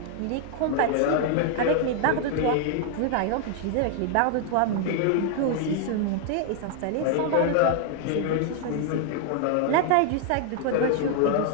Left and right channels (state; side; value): different; both; correlation 0.00